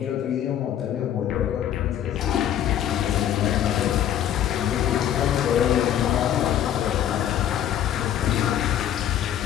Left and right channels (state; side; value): quieter; right; 10.7 dB